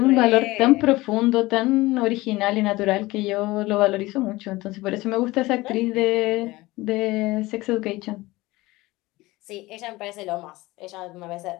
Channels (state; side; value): quieter; right; 19.9 dB